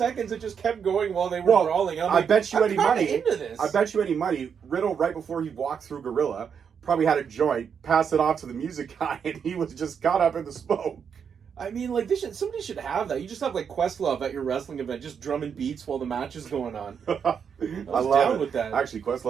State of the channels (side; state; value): left; quieter; 7.1 dB